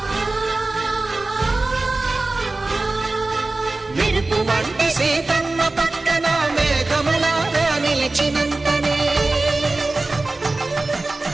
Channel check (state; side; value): quieter; left; 3.2 dB